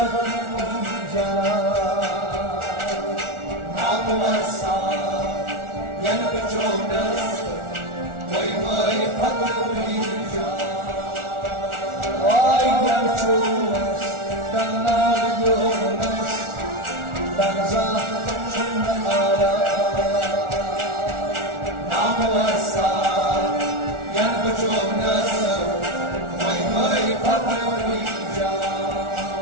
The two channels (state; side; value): late; left; 1.4 ms